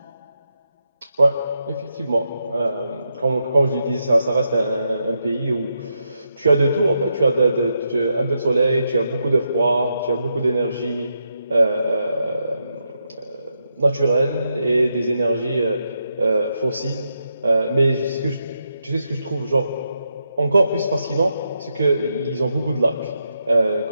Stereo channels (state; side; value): inverted; both; correlation -0.83